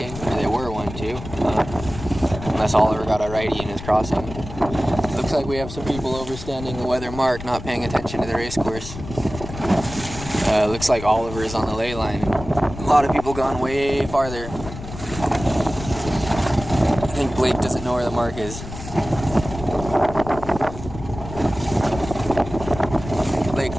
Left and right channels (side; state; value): left; noise; rumble, 11 dB below the sound